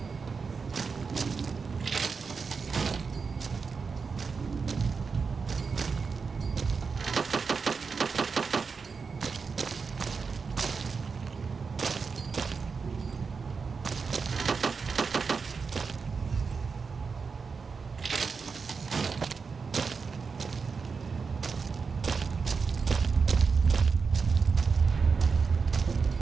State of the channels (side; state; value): left; quieter; 5.1 dB